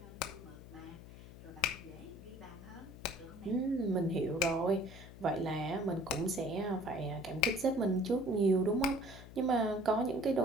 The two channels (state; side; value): noise; left; hum, 16 dB below the sound